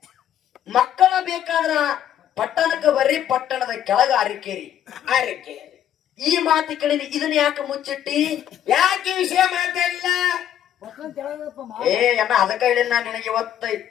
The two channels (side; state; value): right; quieter; 10.5 dB